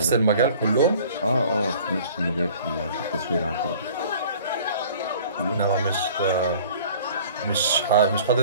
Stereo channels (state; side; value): inverted; both; correlation -0.48